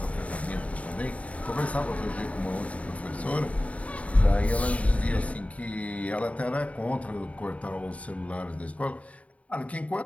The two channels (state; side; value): late; right; 0.067 ms